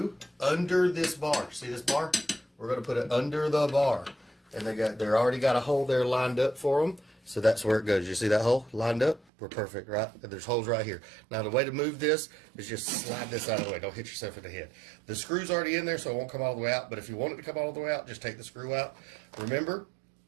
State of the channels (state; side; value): drops out; left; at 9.2 s